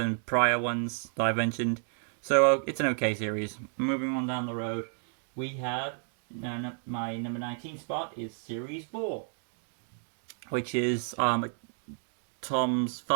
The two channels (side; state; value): left; silent; 57 dB below the other